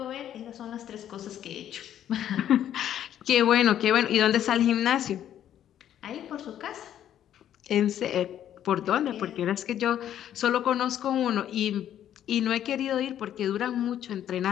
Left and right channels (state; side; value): quieter; right; 10.8 dB